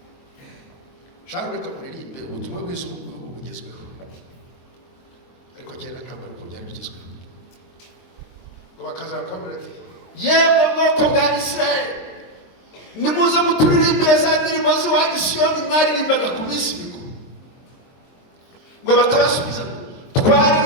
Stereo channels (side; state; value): right; late; 22 ms